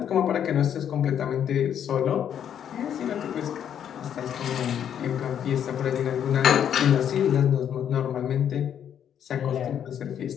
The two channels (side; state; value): right; quieter; 9.2 dB